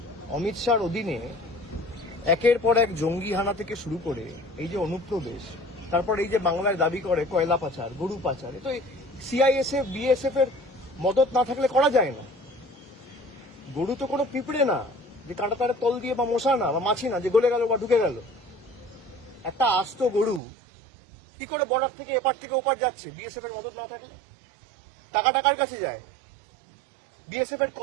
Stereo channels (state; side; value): drops out; left; at 20.4 s